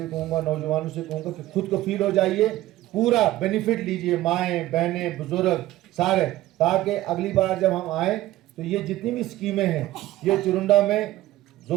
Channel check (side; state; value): left; quieter; 15.6 dB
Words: कहूँगा, नौजवानों से कहूँगा कि खुद को फील हो जाइए, पूरा बेनिफिट लीजिए, माएँ बहनें बुजुर्ग सारे, ताकि अगली बार जब हम आएँ तो ये जितनी भी स्कीमें हैं ये चुरंडा में